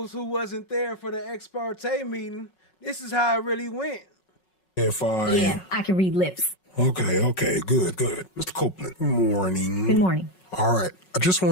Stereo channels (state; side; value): late; right; 5.4 ms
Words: who wasn't there for the ex parte meeting, this is how it really went. Yeah, I can read lips. Okay, good. Mr. Copeland, good morning. Good morning. All right, I just